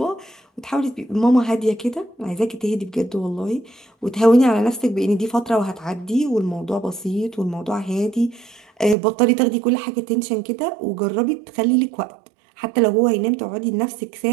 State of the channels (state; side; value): drops out; left; at 9.0 s